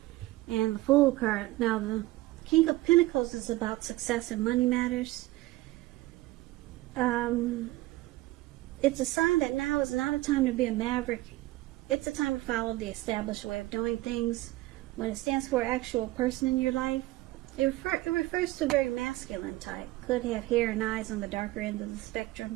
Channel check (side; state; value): left; quieter; 18.3 dB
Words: and the Fool card. Now the King of Pentacles is about success and money matters. It's a sign that now is not a time to be a maverick. It's a time to follow the established way of doing things. When it stands for an actual person in your life, it refers to a very masculine type. Could have hair and eyes on the darker end of the